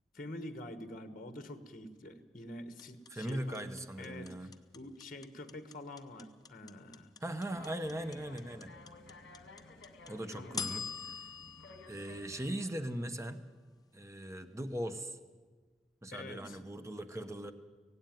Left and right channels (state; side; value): normal; both; correlation 0.77